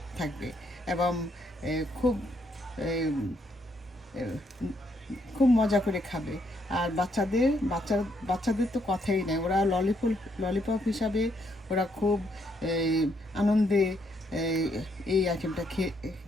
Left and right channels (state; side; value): normal; both; correlation 0.73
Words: থাকবে এবং খুব খুব মজা করে খাবে। আর বাচ্চাদের তো কথাই নেই, ওরা ললিপপ হিসাবে ওরা খুব আনন্দে এই আইটেমটা